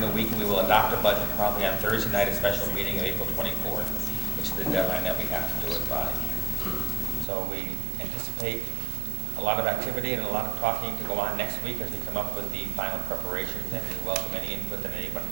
the week, and we will adopt a budget probably on Thursday night, a special meeting of April 24th, which is the deadline that we have to do it by. So we anticipate a lot of activity and a lot of talking to go on next week as we come up with the final preparations, and we welcome any input that anyone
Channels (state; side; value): drops out; left; at 7.2 s